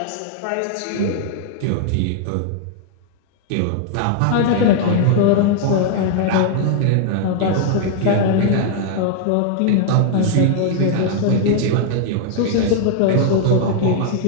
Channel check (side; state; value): both; different; correlation 0.00